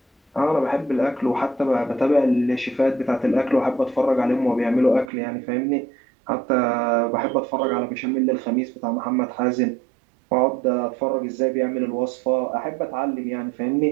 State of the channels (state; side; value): drops out; left; at 5.1 s